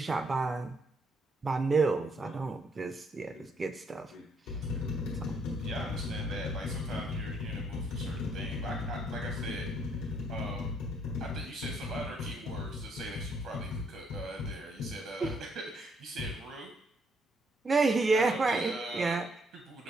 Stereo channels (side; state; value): both; normal; correlation 0.70